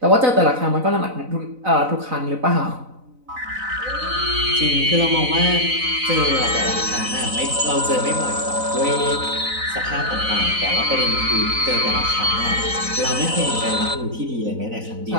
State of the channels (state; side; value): late; left; 4.0 ms